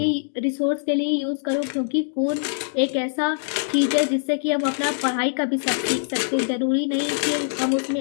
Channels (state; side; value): silent; right; digital silence